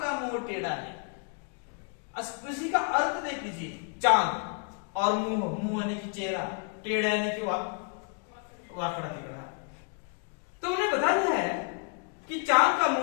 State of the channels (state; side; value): quieter; right; 39.3 dB